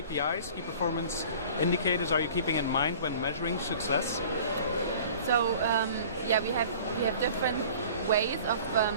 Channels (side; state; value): both; inverted; correlation -0.45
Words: key performance indicators, are you keeping in mind when measuring success? So we have different ways of